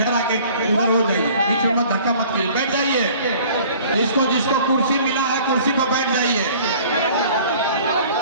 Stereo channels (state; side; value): inverted; both; correlation -0.50